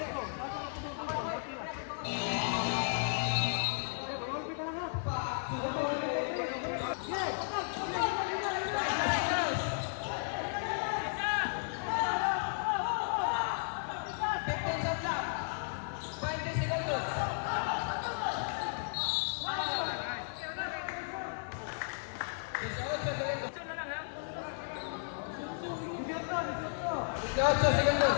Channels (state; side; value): silent; right; digital silence